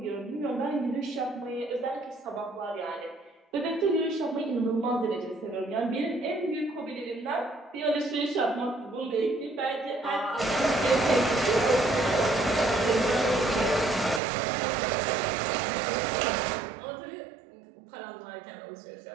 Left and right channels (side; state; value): left; drops out; at 14.2 s